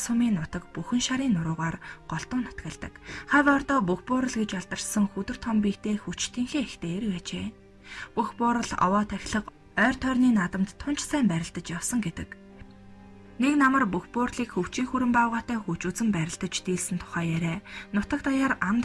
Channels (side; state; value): both; identical; correlation 1.00